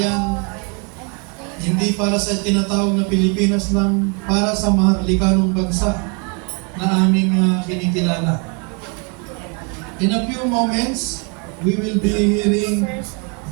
hindi para sa tinatawag na Pilipinas lang, para sa mahalikanong bansa na aming kinikilala. In a few moments, we will be hearing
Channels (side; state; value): left; quieter; 35.1 dB